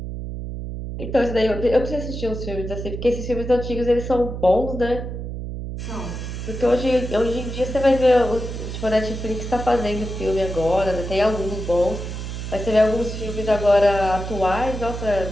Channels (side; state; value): right; noise; hum, 6 dB below the sound